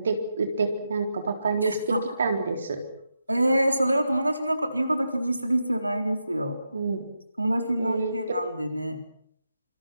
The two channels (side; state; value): both; inverted; correlation -0.86